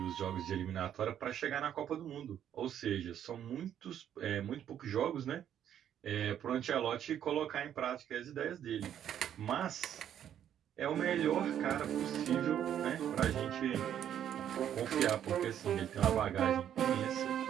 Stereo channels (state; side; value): quieter; left; 10.0 dB